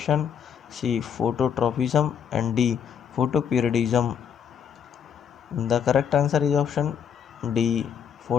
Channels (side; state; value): right; quieter; 7.8 dB